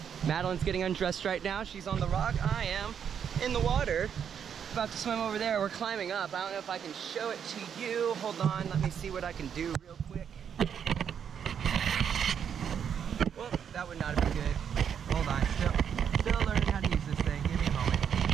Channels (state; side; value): quieter; left; 8.0 dB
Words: Madeline's getting undressed right now. She's on the rock. I am in the water. About to swim over there. We're climbing up. I don't know if I can show it to you. Hold on, let me see what I can do real quick. Well, that would not have been good. Hold on, still learning how to use this thing. Give me a moment.